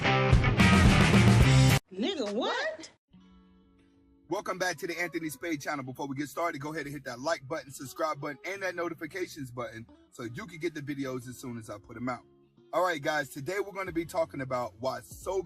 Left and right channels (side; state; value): both; identical; correlation 1.00